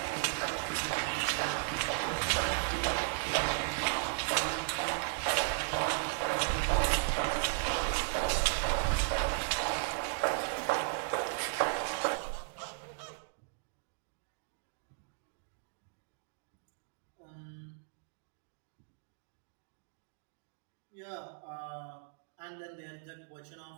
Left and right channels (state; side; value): silent; left; digital silence